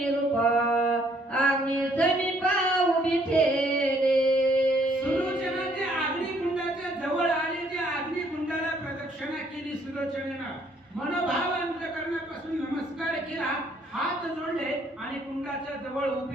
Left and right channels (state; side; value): normal; both; correlation 0.66